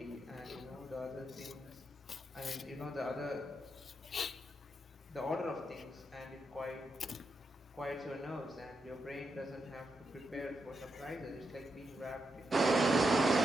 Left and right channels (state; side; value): normal; both; correlation 0.84